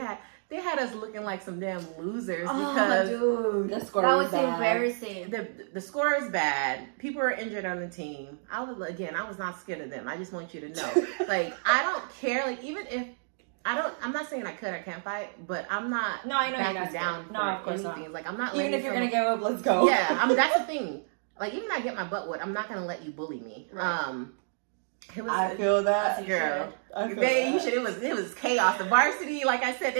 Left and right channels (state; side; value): silent; left; digital silence